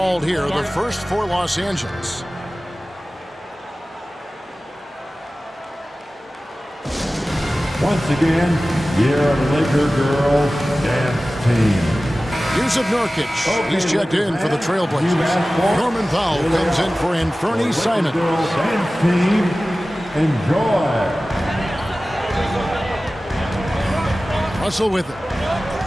here. The first for Los Angeles. Once again, here are the Laker girls dance team. Yusuf Nurkic. He's checked in for the Trailblazers. Norman Powell comes in for Anthony Simons. Girls dance team, enjoy. Russell with it.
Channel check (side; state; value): both; normal; correlation 0.96